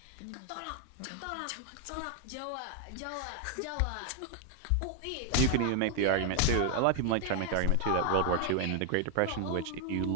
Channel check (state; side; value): different; both; correlation 0.00